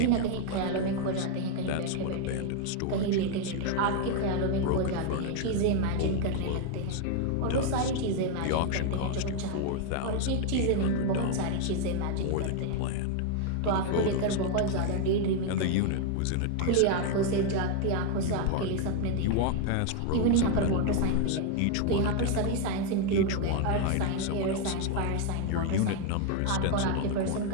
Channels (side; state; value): both; different; correlation 0.00